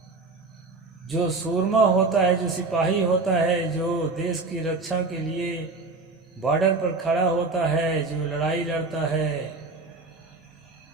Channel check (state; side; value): quieter; left; 3.8 dB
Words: जो सूरमा होता है, जो सिपाही होता है, जो देश की रक्षा के लिए बॉर्डर पर खड़ा होता है, जो लड़ाई लड़ता है,